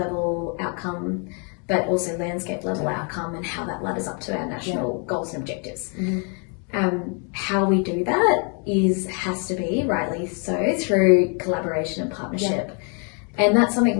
outcome but also landscape level outcome and how that ladders up to our national goals and objectives. How we do that has to be, rightly so, through collaboration and partnership. And that's something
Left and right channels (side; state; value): right; quieter; 38.3 dB